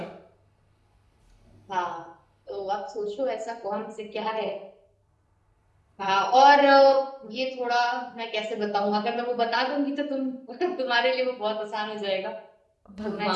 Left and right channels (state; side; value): identical; both; correlation 1.00